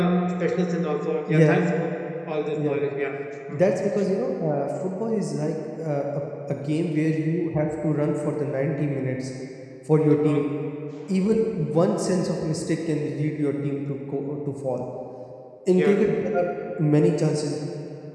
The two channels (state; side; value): identical; both; correlation 1.00